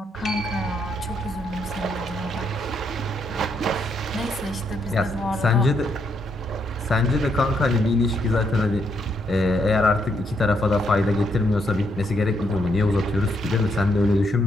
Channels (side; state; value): both; normal; correlation 0.75